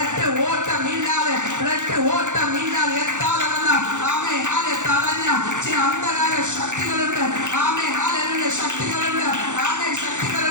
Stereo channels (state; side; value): late; left; 0.85 ms